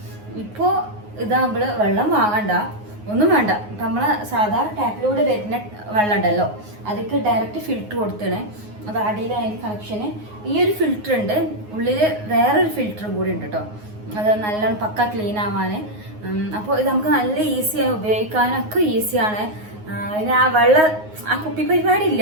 ഇപ്പോൾ ഇതാകുമ്പോൾ വെള്ളം വാങ്ങണ്ട, ഒന്നും വേണ്ട. ഇപ്പം നമ്മളെ സാധാ ടാപ്പിലൂടെ വരുന്ന വെള്ളം ഉണ്ടല്ലോ, അതിക്ക് ഡയറക്റ്റ് ഫിൽറ്റർ കൊടുത്തണേ. അത് അടിയിലായതിന് കണക്ഷന് ഈ ഒരു ഫിൽറ്റർ ഉണ്ട്, ഉള്ളിൽ വേറൊരു ഫിൽറ്ററും കൂടി ഉണ്ട് കേട്ടോ. അത് നല്ലോണം പക്ക ക്ലീൻ ആവാൻ. അപ്പോൾ ഇത് നമുക്ക് നല്ല ഈസിയാണ്, ഉപയോഗിക്കാനൊക്കെ ഈസിയാണ്. പിന്നെ ആ കുപ്പി പരിപാടി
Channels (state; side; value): late; left; 9.5 ms